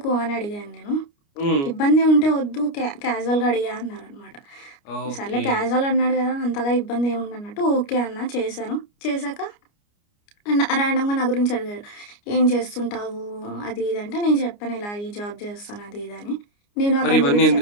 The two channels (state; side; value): late; right; 29 ms